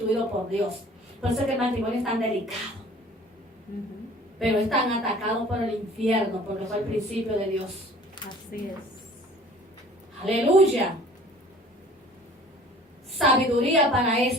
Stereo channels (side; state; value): both; normal; correlation 0.49